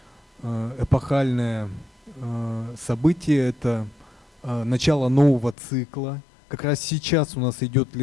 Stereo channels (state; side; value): drops out; right; at 5.6 s